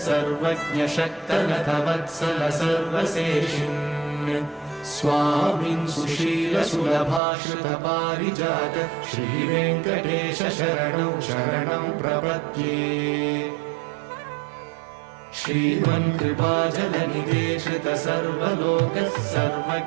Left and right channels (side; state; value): left; drops out; at 7.2 s